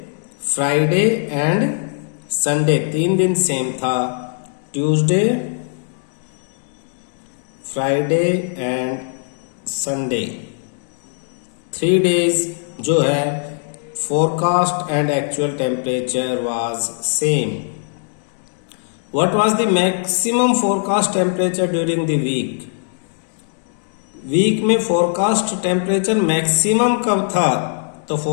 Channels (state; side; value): silent; right; digital silence